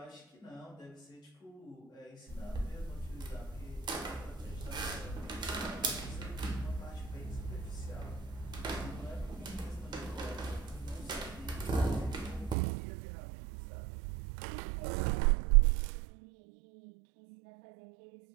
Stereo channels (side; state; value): left; drops out; at 12.6 s